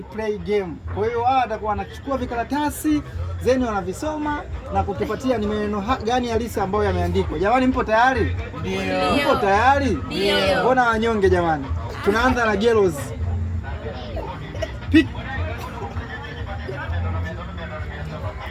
play game. Kwa hiyo wao watakuwa wanachukua vikaratasi zeni wanavisoma na kutupatia ni maneno gani halisi ambayo yameandikwa. Jamani, mpo tayari? Ndio. Mpo tayari? Ndio. Mbona wanyonge jamani? Tunaanza na Gelos. Pick.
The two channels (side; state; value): both; identical; correlation 1.00